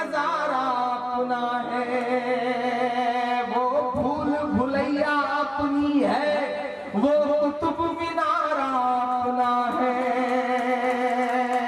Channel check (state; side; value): identical; both; correlation 1.00